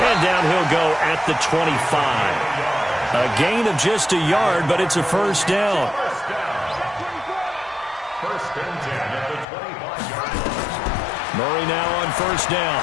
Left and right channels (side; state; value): right; drops out; at 9.5 s